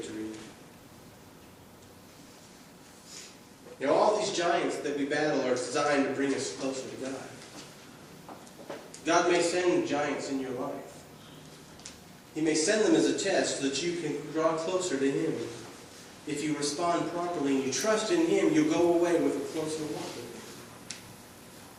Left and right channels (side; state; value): both; identical; correlation 1.00